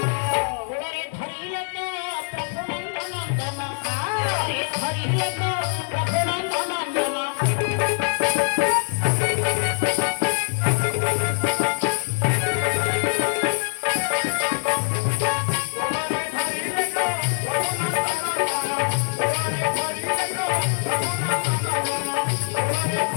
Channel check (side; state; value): right; silent; 59 dB below the other